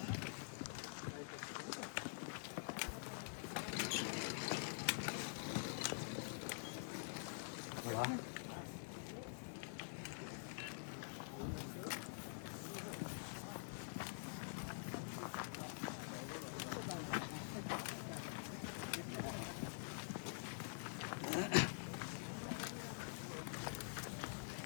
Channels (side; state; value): right; silent; digital silence